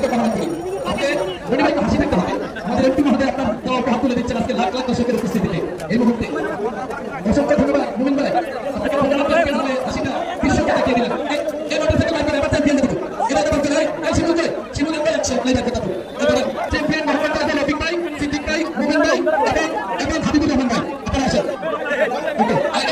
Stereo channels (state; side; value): identical; both; correlation 1.00